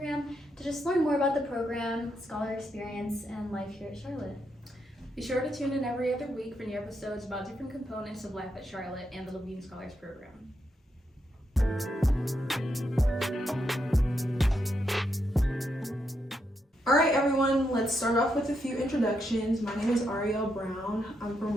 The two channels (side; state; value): both; normal; correlation 0.81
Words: to just learn more about the program, scholar experience, and life here at Charlotte. Be sure to tune in every other week for new episodes about different components of life at Charlotte and the Levine Scholars Program. All right, everyone, let's start off with a few introductions. My name is Ariel Brown. I'm from